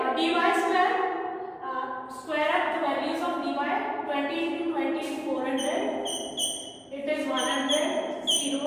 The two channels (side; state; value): both; identical; correlation 1.00